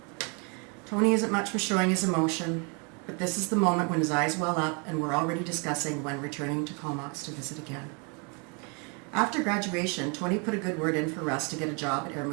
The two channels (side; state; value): left; quieter; 34.0 dB